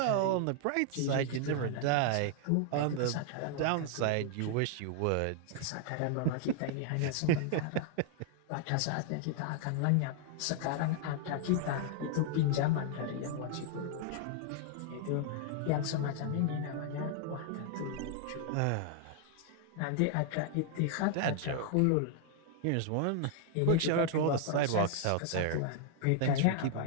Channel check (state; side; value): different; both; correlation 0.00